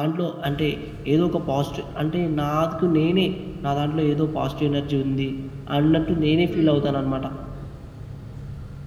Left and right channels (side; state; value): both; identical; correlation 1.00